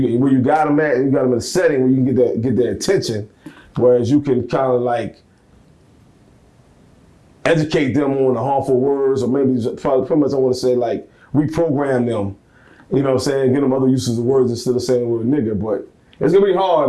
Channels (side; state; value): both; identical; correlation 1.00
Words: where you got them at, you got them in a setting where you can get their attention, whereas you can kind of like educate them on the harmful words, or maybe pretty much I want to say like reprogram them, you know what I'm saying, get them other uses of words instead of saying the word nigger. But it's gonna be